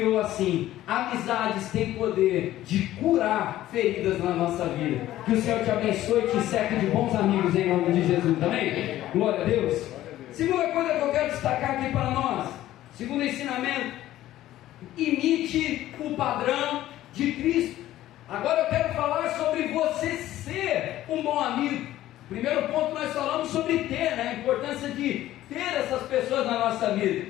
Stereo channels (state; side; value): quieter; right; 14.2 dB